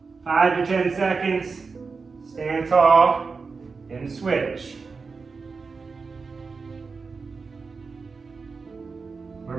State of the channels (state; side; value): quieter; left; 4.7 dB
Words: 5 to 10 seconds, stand tall, and switch. We're